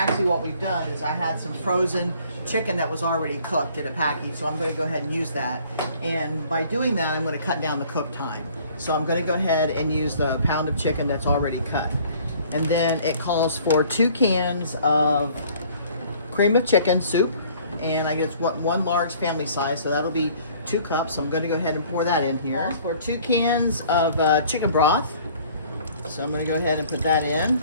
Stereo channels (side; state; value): both; inverted; correlation -0.55